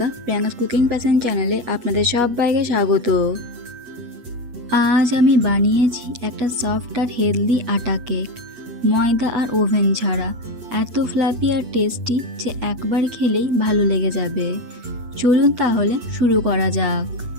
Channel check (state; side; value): late; left; 8.2 ms